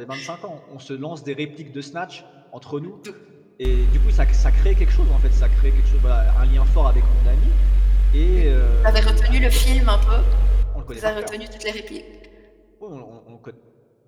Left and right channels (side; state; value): both; identical; correlation 1.00